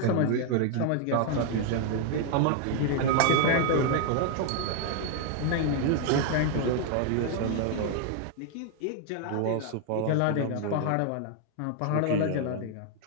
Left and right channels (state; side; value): different; both; correlation 0.00